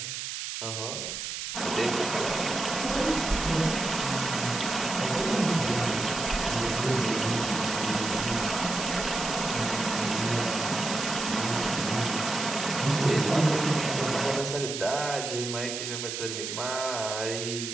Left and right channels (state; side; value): noise; right; hiss, 5 dB below the sound